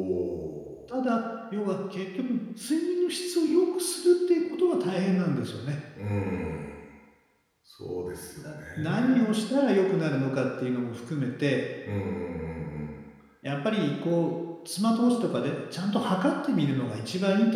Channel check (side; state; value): both; identical; correlation 1.00